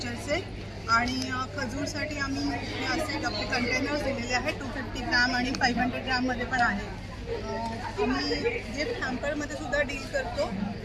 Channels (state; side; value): identical; both; correlation 1.00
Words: आणि खजूरसाठी आम्ही हे असे आपले कंटेनर्स दिलेले आहेत 250 ग्राम आणि 500 ग्राममध्ये पण आहे. आम्ही गिफ्ट हॅम्परमध्ये सुद्धा डील करतो.